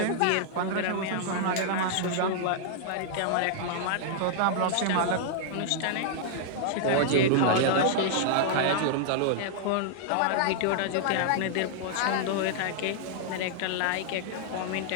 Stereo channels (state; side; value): different; both; correlation -0.01